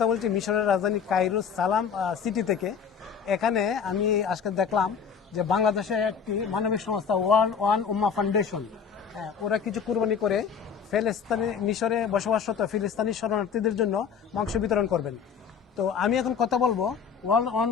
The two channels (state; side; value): quieter; right; 6.7 dB